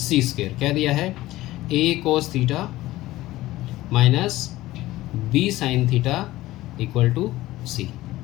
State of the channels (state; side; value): quieter; right; 16.8 dB